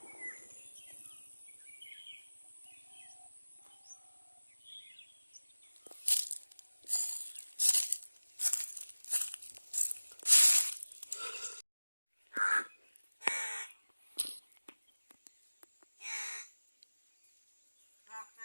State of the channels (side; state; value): both; inverted; correlation -1.00